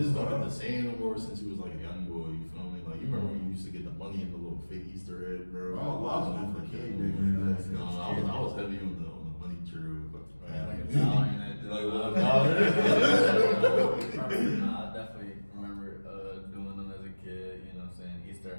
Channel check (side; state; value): both; inverted; correlation -1.00